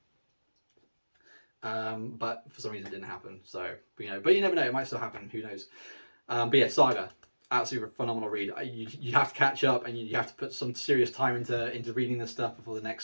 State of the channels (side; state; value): both; inverted; correlation -1.00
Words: But for some reason it didn't happen. So, but you never know, it might still happen, who knows. But yeah, Saga, absolutely phenomenal read. You have to catch up, and you have to put some serious time into reading this stuff before the